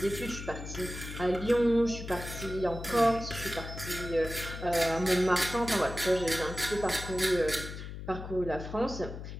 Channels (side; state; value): left; noise; hum, 9 dB below the sound